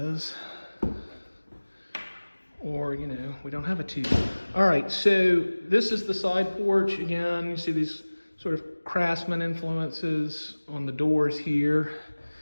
Or, you know, we don't have a TV. All right, so this is the side porch. Again, you see these sort of craftsman influences on the doors here.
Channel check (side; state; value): both; inverted; correlation -1.00